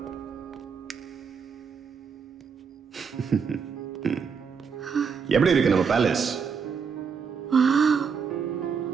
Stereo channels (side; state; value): left; quieter; 6.1 dB